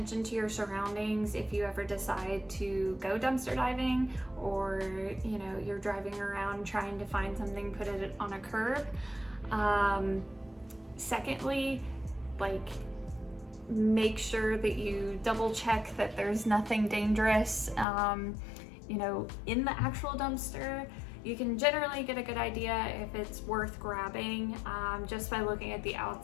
to your surroundings if you ever decide to go dumpster diving, or you know, you're driving around trying to find something, put it on a curb. Secondly, like, make sure that you double check that there's nothing dangerous, you know, in the actual dumpster. You can generally get a good idea if it's worth grabbing just by looking at the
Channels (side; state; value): right; drops out; at 17.9 s